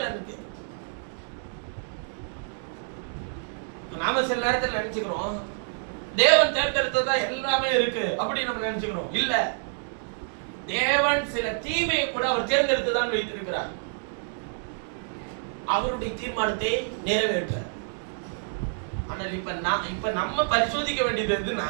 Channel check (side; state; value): left; silent; digital silence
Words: நாம சில நேரத்தில் நினைச்சுக்கிறோம் தேவன் தேர்ந்தெடுத்ததா எல்லாமே இருக்கு அப்படி நம்ம நினைச்சுக்கிறோம். இல்ல, தேவன் சில தீமையை கூட அவர் தேர்ந்தெடுத்துதான் வைத்திருக்கிறார். அவருடைய தீர்மானத்தை நிறைவேற்ற. ஆனால் இப்ப நம்ம பரிசோதிக்க வேண்டியது